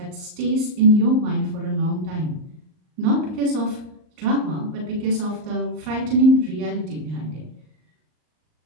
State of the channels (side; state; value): left; late; 38 ms